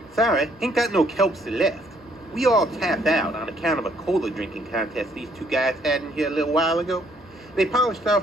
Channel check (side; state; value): both; normal; correlation 0.66